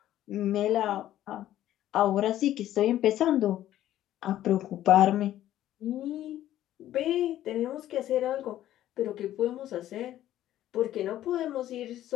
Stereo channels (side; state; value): right; quieter; 12.9 dB